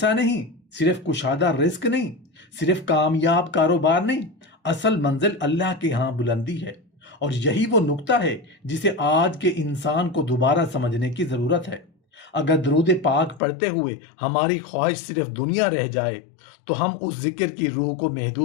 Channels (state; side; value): drops out; right; at 13.4 s